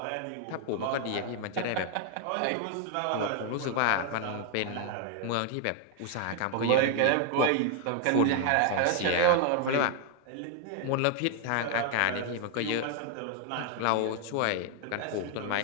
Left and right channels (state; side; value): different; both; correlation 0.00